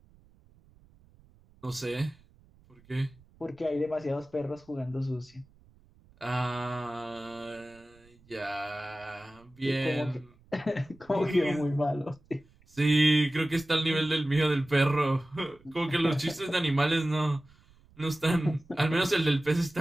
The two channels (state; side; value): noise; right; rumble, 29 dB below the sound